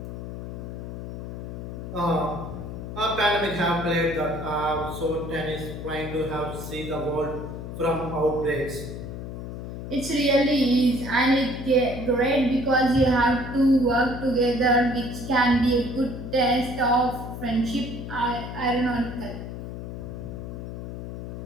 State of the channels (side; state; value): left; noise; hum, 8 dB below the sound